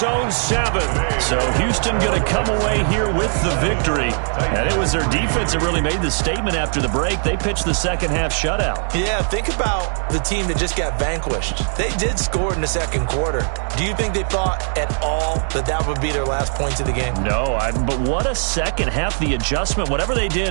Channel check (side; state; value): left; silent; 56 dB below the other